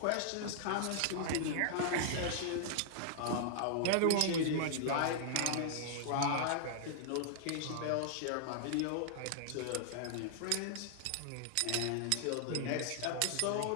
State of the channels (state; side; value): different; both; correlation -0.01